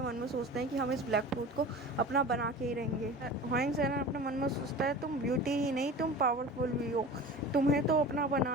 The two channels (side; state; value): both; normal; correlation 0.36